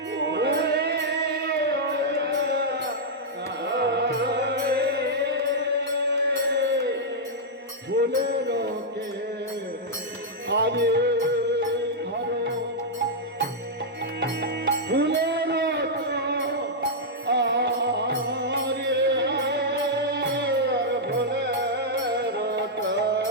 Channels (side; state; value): both; normal; correlation -0.06